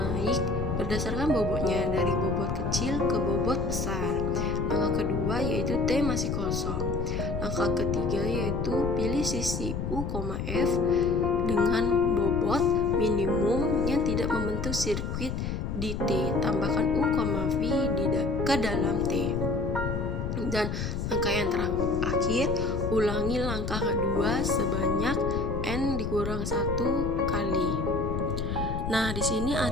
berdasarkan bobotnya dari bobot kecil ke bobot besar. Langkah kedua yaitu T masih kosong. Langkah ketiga yaitu pilih sisi U, F dengan bobot minimum yang tidak membentuk sirkuit di T. Tambahkan U, V ke dalam T. Dan langkah yang terakhir, ulangi langkah kedua sebanyak N dikurang 1 kali. Nah, di sini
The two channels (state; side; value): noise; left; rumble, 3 dB below the sound